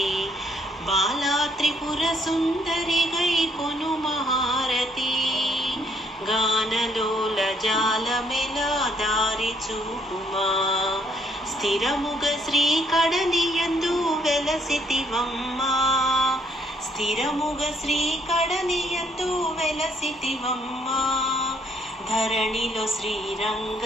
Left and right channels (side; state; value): both; normal; correlation 0.69